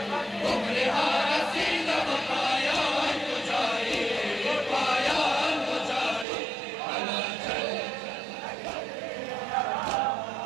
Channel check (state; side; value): drops out; left; at 6.2 s